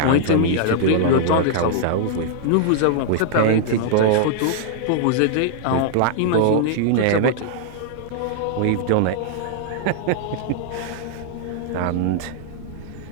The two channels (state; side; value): different; both; correlation -0.01